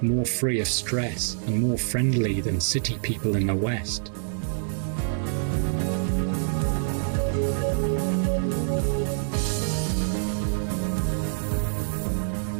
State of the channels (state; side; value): silent; left; 61 dB below the other